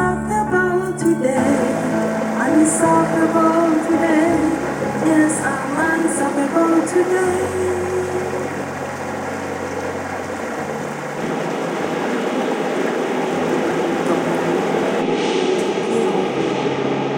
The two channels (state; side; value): identical; both; correlation 1.00